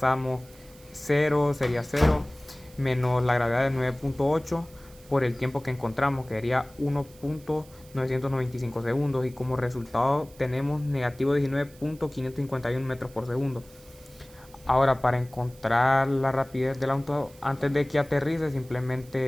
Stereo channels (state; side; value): noise; right; hiss, 25 dB below the sound